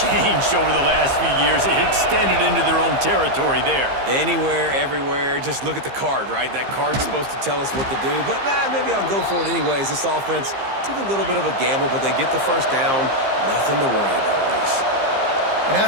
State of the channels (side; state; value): left; late; 15 ms